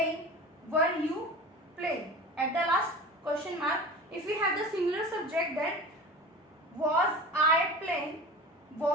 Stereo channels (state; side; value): normal; both; correlation 0.35